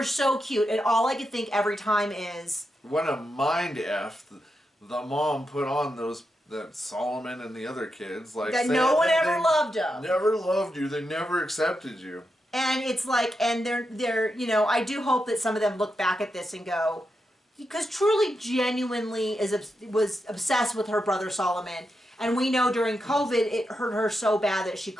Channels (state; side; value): normal; both; correlation 0.86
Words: so cute, and all I could think every time is, what a mind F the mom put on that Solomon and the other kids, like that no one ever loved them. Never loved you. They never accepted you. And it's like, and they're I do hope that some of them look back at this and go, because Truly genuinely was obsessed with her brother Solomon. And we know during COVID, it hurt her so bad that she